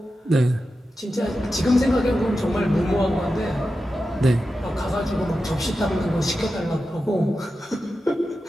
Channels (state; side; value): normal; both; correlation 0.91